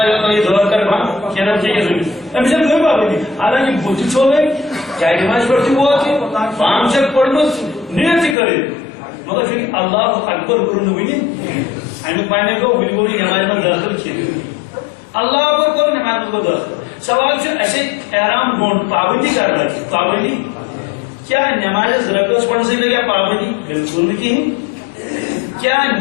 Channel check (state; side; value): drops out; right; at 8.3 s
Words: یا تو یہ دور کر بھا کیا نام چاہیے زمین اب جب کوئی بات نہیں حالانکہ بوتی چھوڑ گئی چاہے نماز پڑھتی ہوا تھی 5 سے پڑھنا نیت کرے مگر پھر اللہ اکبر کرنے ہوئی امیک معنی کو بلکل نماز میں داخل کیے اللہ اکبر کرو نماز میں داخل سوال سے ایسے احرام گھونٹ پابندی کر رہا ہے پابندی کیا نماز رکعت پڑھنے سے لگا پابندی بالکل نہیں کیا